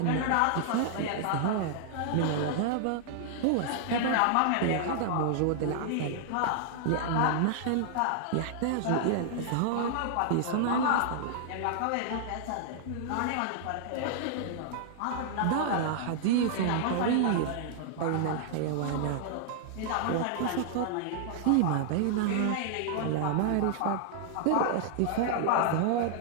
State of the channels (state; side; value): different; both; correlation -0.01